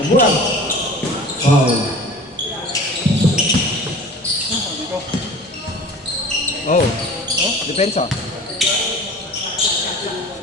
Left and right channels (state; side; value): normal; both; correlation 0.41